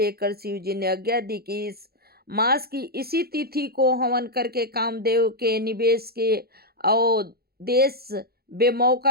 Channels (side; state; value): left; late; 0.45 ms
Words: शिव जी ने आज्ञा दी कि इस मास की इसी तिथि को हवन करके कामदेव के निवेश के अवदेश